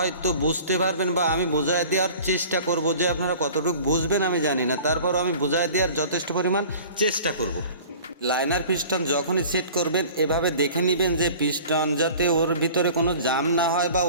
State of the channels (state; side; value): inverted; both; correlation -0.44